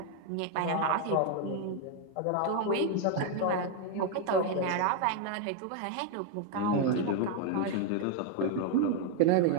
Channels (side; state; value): both; different; correlation 0.01